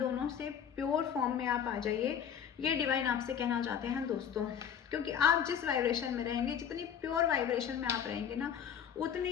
से प्योर फॉर्म में आप आ जाइए, ये डिवाइन आपसे कहना चाहते हैं दोस्तों। क्योंकि आप जिस वाइब्रेशन में रहेंगे, जितनी प्योर वाइब्रेशन में आप रहेंगे ना,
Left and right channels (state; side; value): quieter; right; 8.3 dB